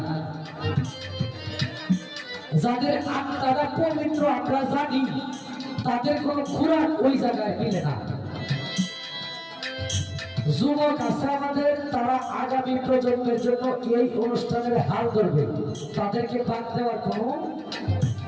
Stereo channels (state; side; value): identical; both; correlation 1.00